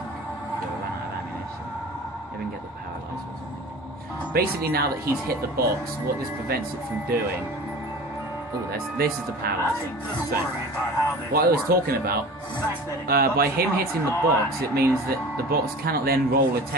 We'll run out of ammunition. Maybe we can get the paralyzer or something. Basically, now that he's hit the box, what this prevents it from doing... Oh, this is the paralyzing. So, what I was talking about, by him hitting the box, it means that the box cannot then roll a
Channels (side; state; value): both; normal; correlation 0.38